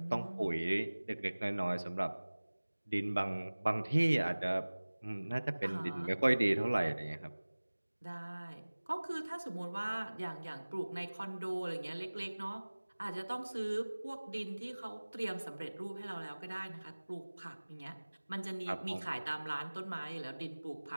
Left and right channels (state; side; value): inverted; both; correlation -1.00